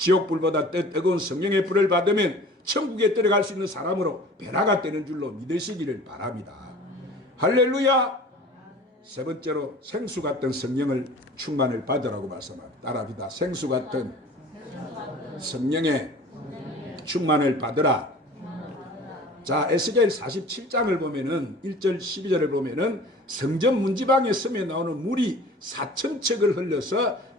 뜨거운 성령의 불을 받으면 천국에 들어갈 수 있는 사람으로 변화가 되는 줄로 믿으시기를 바랍니다. 할렐루야. 세 번째로 생수 같은 성령을 충만을 받으라고 말씀합니다. 따라합니다. 생수 같은 성령의 충만을 받으라. 자, 에스겔 47장을 보면은 1절 12절을 보면은 성전 문지방에 섬에 나오는 물이 4,000척을 흘려서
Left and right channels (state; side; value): normal; both; correlation 0.44